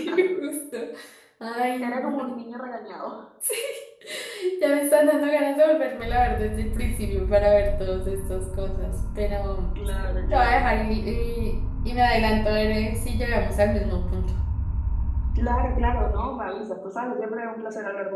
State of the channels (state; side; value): identical; both; correlation 1.00